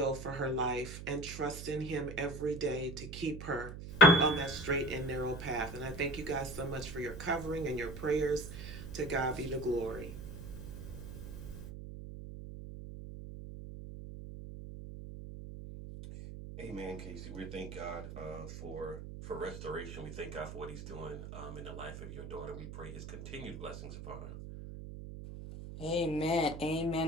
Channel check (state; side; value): noise; right; hum, 9 dB below the sound